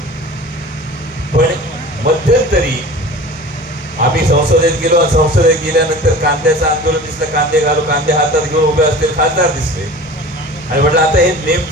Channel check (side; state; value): both; normal; correlation 0.39